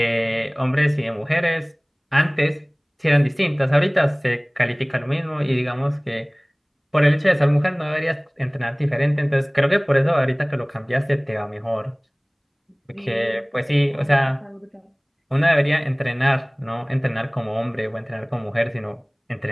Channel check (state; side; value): identical; both; correlation 1.00